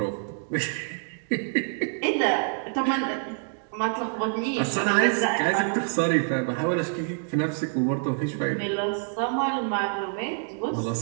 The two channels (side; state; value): left; silent; 60 dB below the other